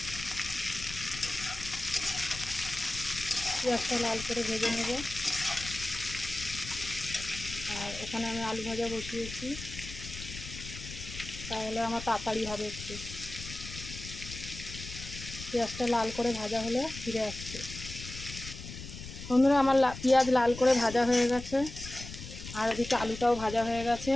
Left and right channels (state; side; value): noise; left; rumble, 11 dB below the sound